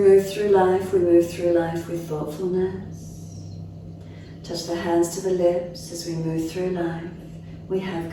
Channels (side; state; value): both; identical; correlation 1.00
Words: through life with thoughtfulness. Touch the hands to the lips as we move through life. We have